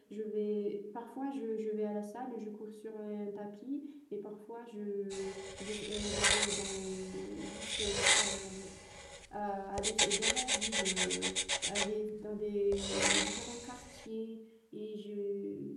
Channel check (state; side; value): identical; both; correlation 1.00